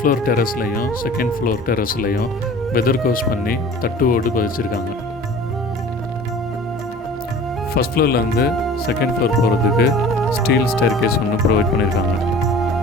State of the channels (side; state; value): both; normal; correlation 0.43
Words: டெரஸ்லையும் செகண்ட் ஃப்ளோர் டெரஸ்லையும் வெதர் கோர்ஸ் பண்ணி தட்டு ஓடு பதிச்சிருக்காங்க. ஃபஸ்ட் ஃப்ளோர்லேருந்து செகண்ட் ஃப்ளோர் போகிறதுக்கு ஸ்டீல் ஸ்டேர் கேஸ் ஒன்று ப்ரொவைட் பண்ணியிருக்காங்க.